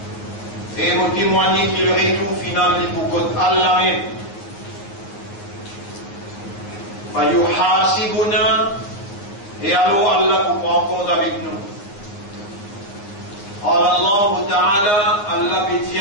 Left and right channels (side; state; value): right; late; 9.7 ms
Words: Et vous témoignez que le retour final est pour Allah même. فيحاسبنا. Et alors Allah vous prend compte avec nous. قال الله تعالى, Allah dit